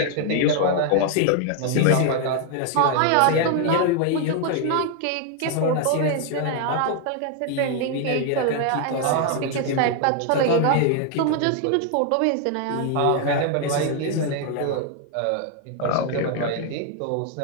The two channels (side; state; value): both; different; correlation 0.00